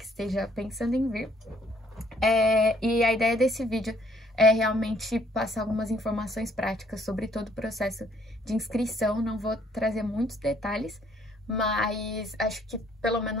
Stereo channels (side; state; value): both; normal; correlation 0.64